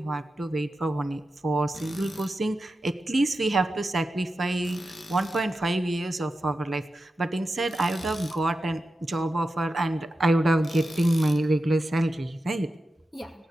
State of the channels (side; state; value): both; normal; correlation 0.91